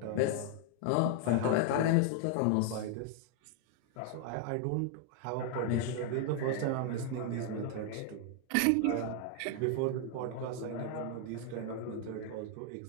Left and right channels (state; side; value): different; both; correlation 0.00